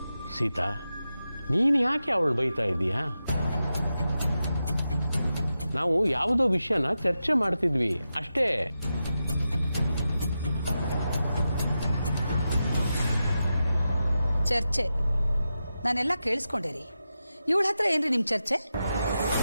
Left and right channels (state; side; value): inverted; both; correlation -0.90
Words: ಸೀತಾ, ನೀನು ಯಾಕೆ ಅವಳು ಬೈತಾ ಇದೀಯಾ? ನಾವು ಯಾವುದೋ ವಿಷಯನ ಚರ್ಚೆ ಮಾಡ್ತಿದ್ವಿ ಅಷ್ಟೇ. ಚರ್ಚೆ ನಾನೆಲ್ಲ ಕೇಳಿಸ್ಕೊಂಡೇರಿ. ಇವಳ ಹತ್ರ ಏನ್ರಿ ನಿಮ್ ಚರ್ಚೆ?